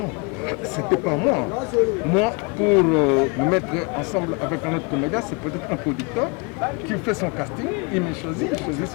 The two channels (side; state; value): right; quieter; 31.7 dB